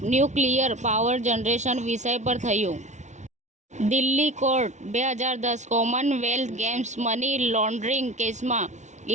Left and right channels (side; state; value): left; late; 0.34 ms